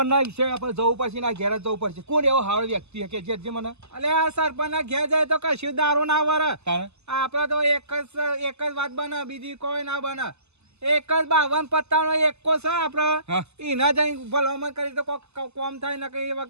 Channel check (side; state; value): left; late; 0.80 ms